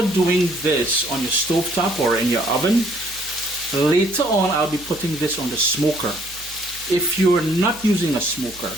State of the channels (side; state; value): right; noise; hum, 21 dB below the sound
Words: doing this on your stovetop or in your oven, later on, I'll be putting this on the smoker. If you're not using a smoker,